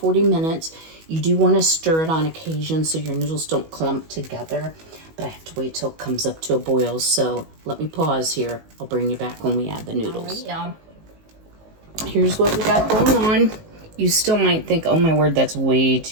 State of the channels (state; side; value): late; left; 19 ms